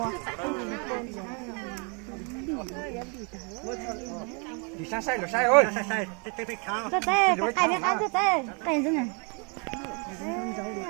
啊？你先晒就晒哦，晒，得看。这在，还没看这在，干什么？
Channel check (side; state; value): left; quieter; 35.3 dB